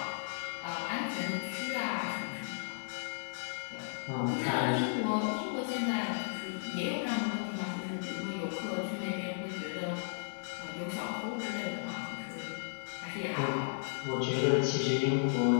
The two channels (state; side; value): silent; right; digital silence